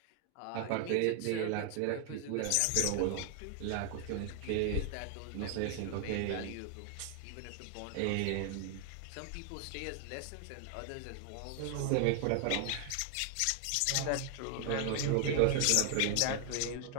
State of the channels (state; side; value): different; both; correlation 0.00